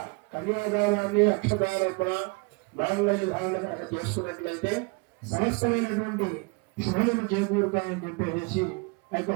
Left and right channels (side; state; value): left; quieter; 29.4 dB